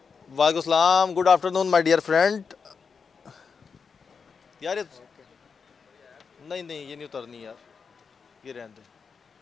वालेकुम सलाम. Good afternoon my dear friend. यार ये नहीं नहीं ये नहीं उतरनी यार, ये रहने दे.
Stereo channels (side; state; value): right; quieter; 5.6 dB